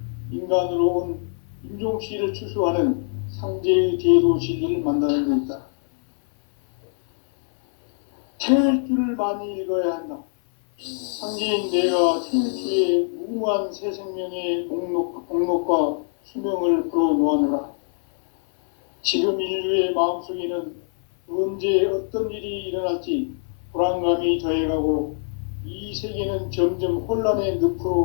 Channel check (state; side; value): silent; right; 63 dB below the other